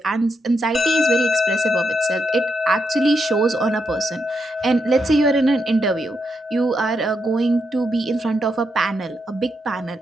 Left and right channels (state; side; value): normal; both; correlation 0.82